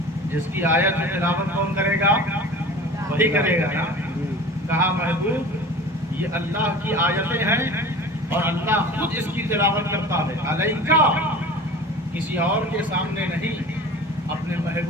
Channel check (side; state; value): both; normal; correlation 0.38